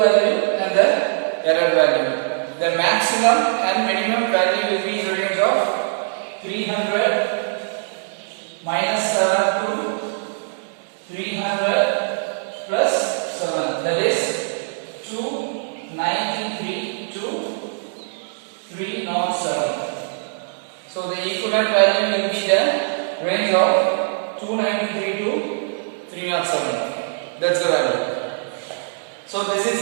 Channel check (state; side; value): silent; left; digital silence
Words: and the error value. The maximum and minimum value will be in the range of 300 minus 7 to 300 plus 7. That is 293 to 307. So the equivalent value will be the range of 293 to 307. That's the value. So this